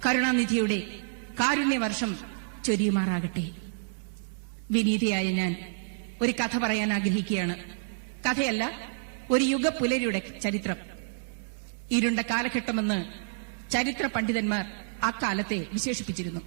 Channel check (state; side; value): silent; left; digital silence